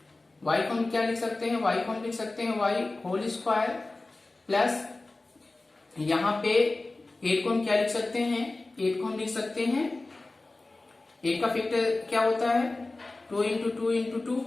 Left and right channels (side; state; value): right; quieter; 3.1 dB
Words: y को हम क्या लिख सकते हैं, y को हम लिख सकते हैं y होल स्क्वायर प्लस यहाँ पे 8 को हम क्या लिख सकते हैं 8 को हम लिख सकते हैं 8 का फैक्टर क्या होता है 2 इंटू 2 इंटू